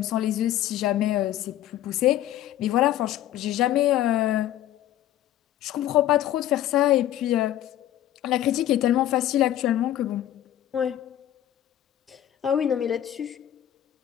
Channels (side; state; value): right; quieter; 12.5 dB